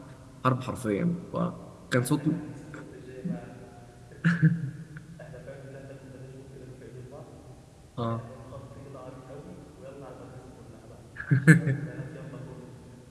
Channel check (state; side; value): identical; both; correlation 1.00